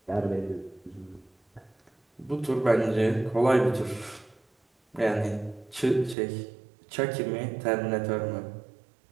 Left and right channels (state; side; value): drops out; left; at 6.2 s